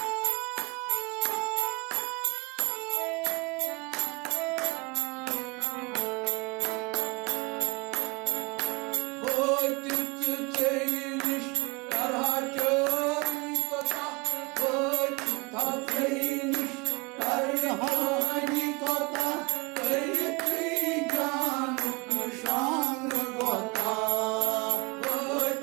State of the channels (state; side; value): quieter; left; 28.1 dB